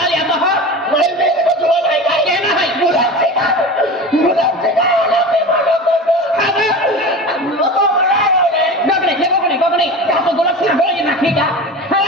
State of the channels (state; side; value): normal; both; correlation 0.31